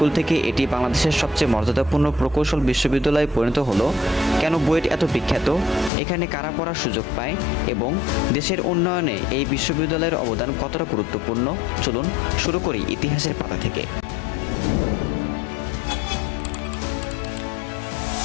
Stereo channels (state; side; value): drops out; right; at 5.9 s